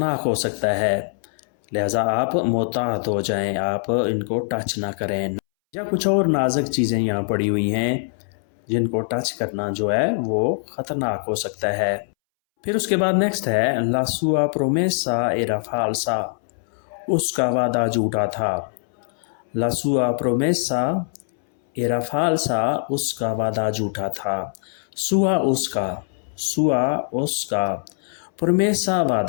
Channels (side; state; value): right; silent; 64 dB below the other